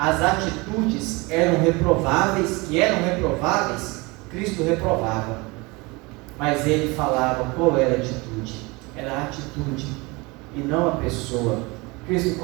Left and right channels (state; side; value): quieter; left; 25.2 dB